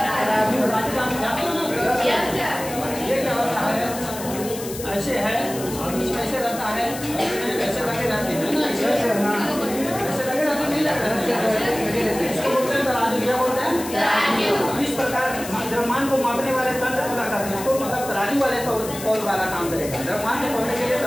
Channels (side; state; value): left; noise; hiss, 11 dB below the sound